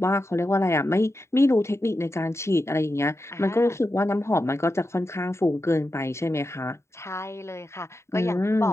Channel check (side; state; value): right; late; 0.13 ms